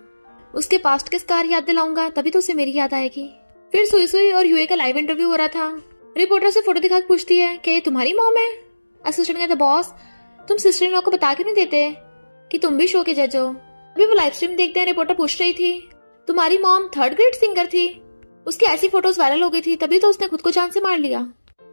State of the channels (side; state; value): both; inverted; correlation -1.00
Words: उसके पास्ट के स्कार याद दिलाऊंगा तभी तो उसे मेरी याद आएगी। फिर सुई और यूए का लाइव इंटरव्यू हो रहा था। रिपोर्टर से फोटो दिखा पूछती है क्या ये तुम्हारी मॉम है। असिस्टेंट कहता बॉस तुम सिस्टर इन लॉ को बता क्यों नहीं देते कि तुम भी शो के जज हो। अभी वो लाइव स्ट्रीम देखते हैं। रिपोर्टर पूछ रही थी तुम्हारी मॉम 3rd ग्रेड सिंगर थी, उसकी ऐसी फोटोज वायरल हो गई थी तभी तो उसने खुद को जान से मार लिया,